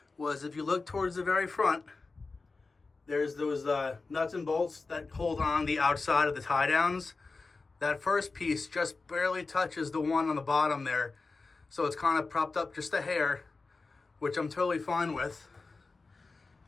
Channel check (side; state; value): right; quieter; 3.9 dB